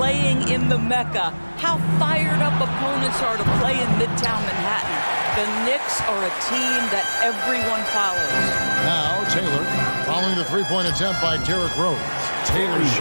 in the Mecca, how fired up opponents are to play in Midtown Manhattan. The Knicks are a team that everyone follows. Now Taylor, following the three-point attempt by Derrick Rose. Taylor's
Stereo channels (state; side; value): inverted; both; correlation -1.00